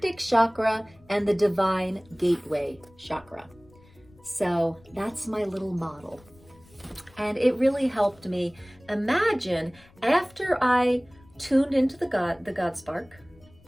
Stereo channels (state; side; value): noise; left; rumble, 27 dB below the sound